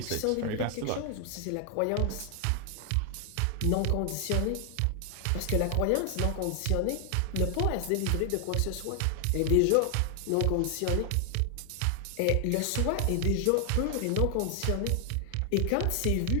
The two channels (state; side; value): different; both; correlation 0.00